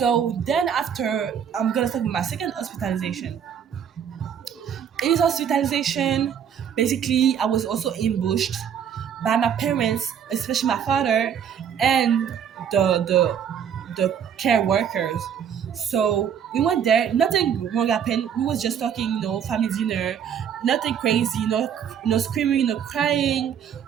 then after, I'm gonna talk about my second hospitalization. In this hospitalization, basically I was also ambushed by my parents, especially my father, and the care workers. So we went there, nothing wrong happened. We was just talking, family dinner, nothing crazy, no screaming, no crying,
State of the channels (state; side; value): quieter; left; 8.3 dB